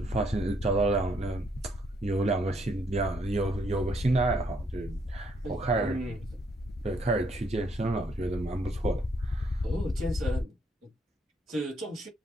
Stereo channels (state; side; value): normal; both; correlation 0.71